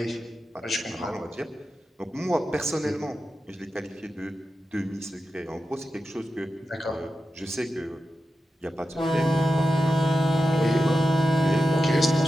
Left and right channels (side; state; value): both; normal; correlation 0.90